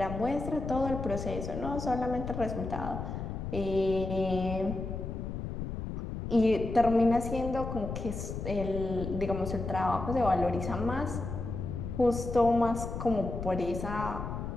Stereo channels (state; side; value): noise; left; rumble, 5 dB below the sound